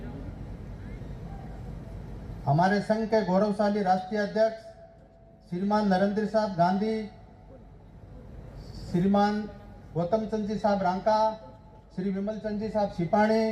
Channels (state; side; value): identical; both; correlation 1.00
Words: हमारे संघ के गौरवशाली राष्ट्रीय अध्यक्ष श्रीमान नरेंद्र साहब गांधी, श्रीमान गौतम चंद जी साहब रांका, श्री विमल चंद जी साहब